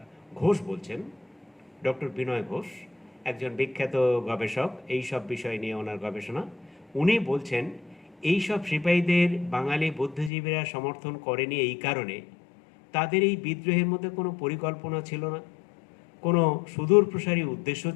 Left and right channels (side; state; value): right; drops out; at 10.3 s